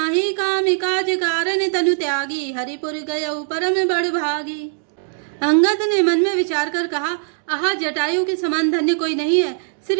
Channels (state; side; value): silent; left; digital silence